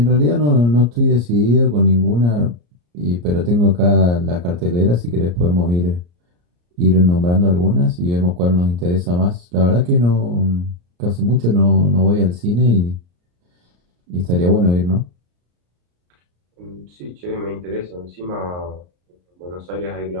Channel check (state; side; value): late; left; 34 ms